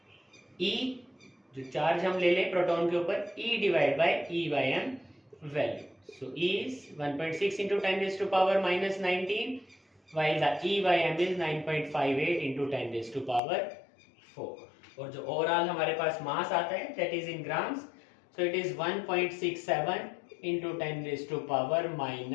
E, जो चार्ज हम ले ले प्रोटॉन के ऊपर, E divide by E/m value. So E is 1.6 into 10⁻⁻19 while the E/m is 9.58 into 10⁴ और जो ओवरऑल हमारे पास मास आता है that is in grams, so it is 1.67 into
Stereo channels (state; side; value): drops out; right; at 13.4 s